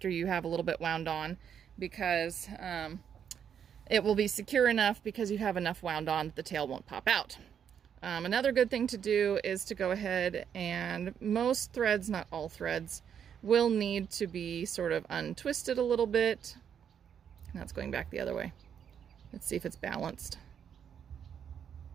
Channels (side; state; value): left; quieter; 8.2 dB